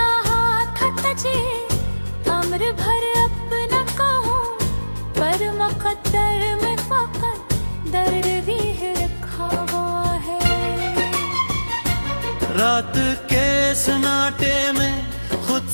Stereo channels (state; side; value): inverted; both; correlation -1.00